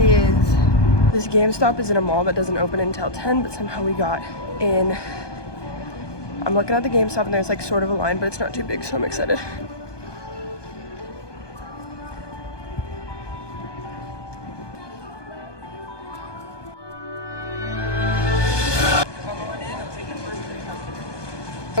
This GameStop is in a mall that doesn't open until 10, but somehow we got in. I'm looking at the GameStop and there's like sort of a line, but it's not too big, so I'm excited.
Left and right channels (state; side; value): late; right; 1.2 ms